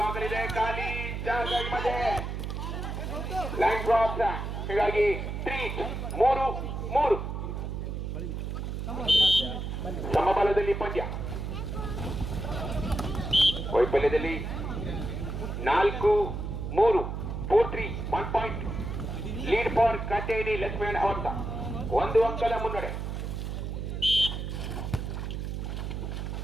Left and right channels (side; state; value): right; noise; hum, 4 dB below the sound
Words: ಖಾಲಿ ಜಾಗ ಮಧ್ಯೆ ಲೈನ್ ಕ್ರಾಸ್, ಹೀಗಾಗಿ 3-3 ಸಮಬಲದಲ್ಲಿ ಪಂದ್ಯ. ವೈಫಲ್ಯದಲ್ಲಿ 4-3 4-3 1 ಪಾಯಿಂಟ್ ಲೀಡ್ ಫಾರ್ ಕಟೇನಿ ಲಕ್ಷ್ಮೀನಾರಾಯಣ್ ಅವತ್ತ 1 ಅಂಕದ ಮುನ್ನಡೆ.